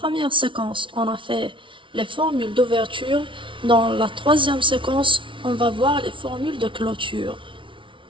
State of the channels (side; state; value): left; late; 0.25 ms